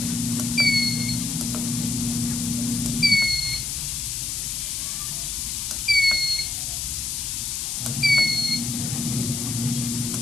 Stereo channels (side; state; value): left; noise; hiss, 2 dB below the sound